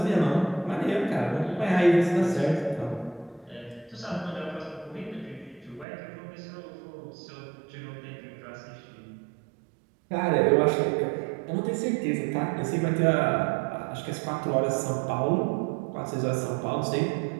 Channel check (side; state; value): left; drops out; at 5.9 s